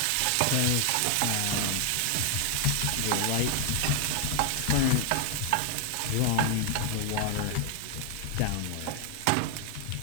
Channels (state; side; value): different; both; correlation 0.00